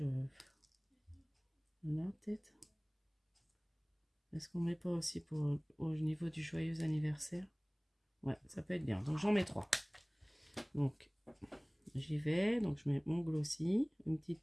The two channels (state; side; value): identical; both; correlation 1.00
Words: là, peut-être. Est-ce qu'on met pas aussi pour au niveau du joyeux anniversaire? Ouais, ça peut être bien. Donc j'en mets 3. Donc j'y vais. Donc je mets mon glossy, une petite